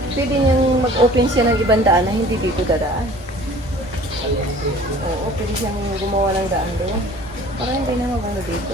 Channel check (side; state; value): both; normal; correlation 0.48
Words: pwede niyang mag-open siya ng ibang daan na hindi dito dadaan. Oo, pwede siyang gumawa ng daan doon. Para hindi na magano dito.